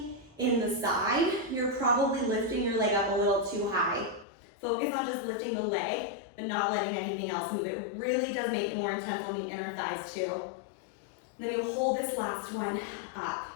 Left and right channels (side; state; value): right; drops out; at 4.2 s